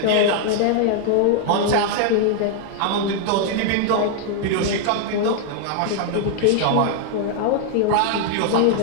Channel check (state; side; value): different; both; correlation 0.00